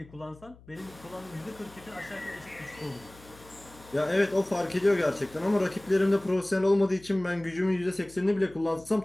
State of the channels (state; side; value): noise; left; hum, 23 dB below the sound